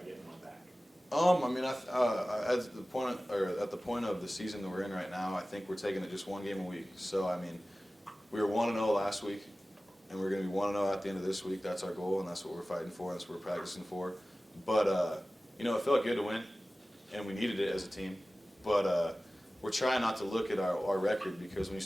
getting one back? I mean, at the point of the season that we're in right now, I think we're taking it just one game a week. So, I mean, we were 1-0 last week, and we're going to be 1-0 at the end of this week. That's our goal, and that's what we're fighting for, and that's what we're practicing for. But, you know, it felt good to win, and we needed it as a team. But we're trying not to look at our record, because when you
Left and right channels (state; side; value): normal; both; correlation 0.96